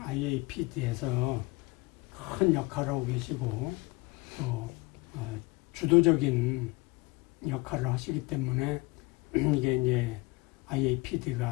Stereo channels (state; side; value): quieter; right; 24.0 dB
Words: 큰 역할을 하고 계시고 또 주도적인 역할을 하시기 때문에 이게 이제